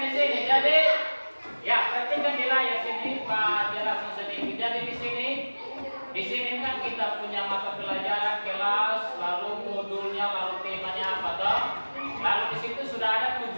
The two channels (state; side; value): inverted; both; correlation -1.00